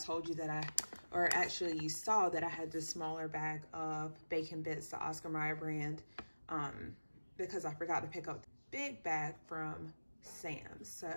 you that or actually you saw that I had this smaller bag of bacon bits, the Oscar Mayer brand, because I forgot to pick up the big bag from Sam's. So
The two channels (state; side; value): inverted; both; correlation -1.00